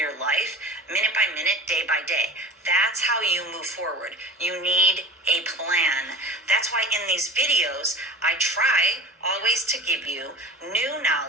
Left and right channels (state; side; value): normal; both; correlation 0.35